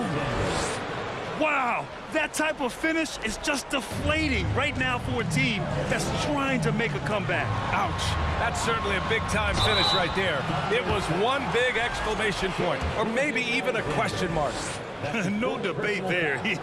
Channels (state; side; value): identical; both; correlation 1.00